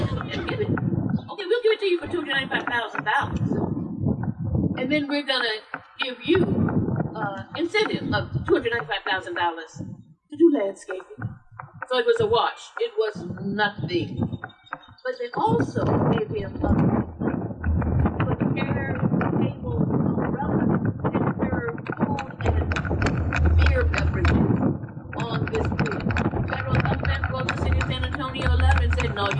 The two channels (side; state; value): both; identical; correlation 1.00